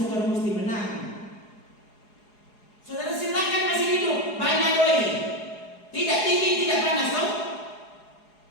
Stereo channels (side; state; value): right; late; 4.8 ms